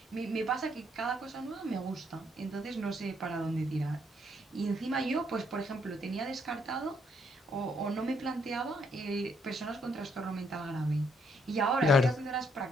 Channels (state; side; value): normal; both; correlation 0.71